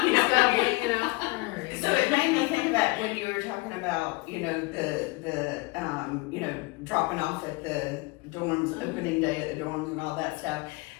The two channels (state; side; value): quieter; right; 24.2 dB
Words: you know, you know. so it made me think about when you were talking about, you know, the you know, dropping off at the dorms, opening day at the dorms and all that stuff.